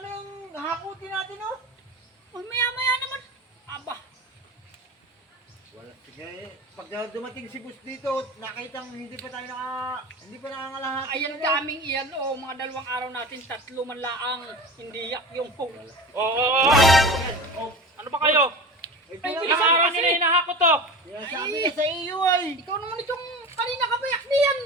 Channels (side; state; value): both; normal; correlation 0.33